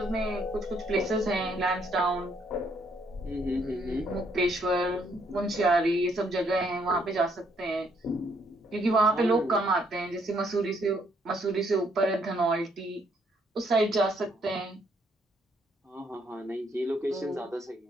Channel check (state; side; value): normal; both; correlation 0.70